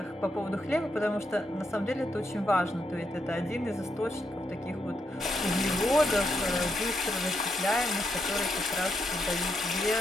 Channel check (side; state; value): both; normal; correlation 0.81